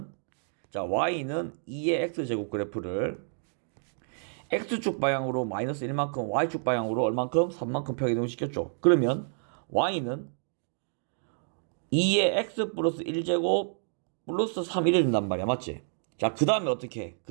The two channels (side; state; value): left; silent; digital silence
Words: 2의 x제곱 그래프를 x축 방향으로 마이너스 1만큼 y축 방향으로 얼만큼? 3만큼 평행이동을 시켰죠. 그러면 y는 2의 x 플러스 1제곱 플러스 3 이래 된단 말이야. 맞지? 자, 그 다음에 어떻게 해?